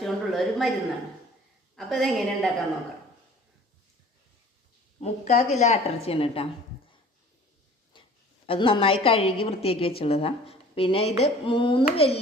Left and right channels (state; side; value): normal; both; correlation 0.48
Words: കൊണ്ടുള്ള ഒരു മരുന്നാണ്. അപ്പോൾ ഇതെങ്ങനെ ഉണ്ടാക്കാൻ നോക്കാം. 3/4 കിലോ ആട്ടിറച്ചിയാണ് കേട്ടോ. അത് നന്നായി കഴുകി വൃത്തിയാക്കി വെച്ചുള്ളതാണ്. പിന്നെ ഇത് 3